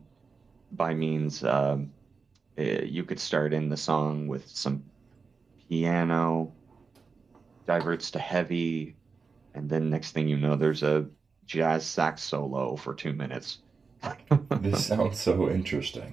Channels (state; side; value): quieter; left; 4.8 dB